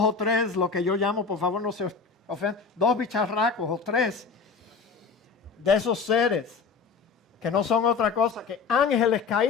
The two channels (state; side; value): quieter; right; 5.2 dB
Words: 3, lo que yo llamo, por favor no se ofendan, 2 bicharracos o 3 de esos seres que no son otra cosa que ángeles